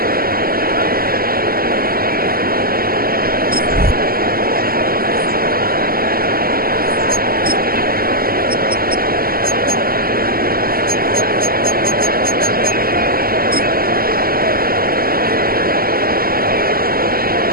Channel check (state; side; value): late; left; 0.43 ms